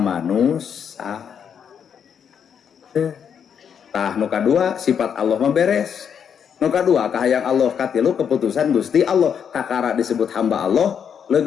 tah nu kadua sifat Allah mah beres. Nu kadua kahayang Allah, katilu keputusan Gusti Allah. Kakara disebut hamba Allah,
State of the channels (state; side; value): quieter; right; 7.7 dB